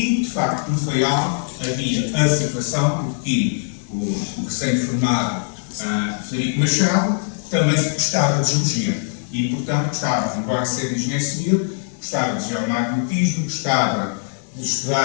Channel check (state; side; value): silent; right; 65 dB below the other